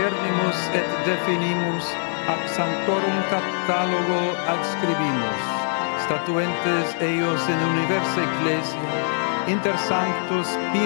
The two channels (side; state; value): right; silent; digital silence